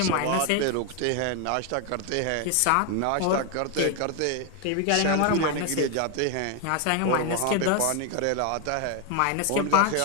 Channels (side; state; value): both; different; correlation 0.01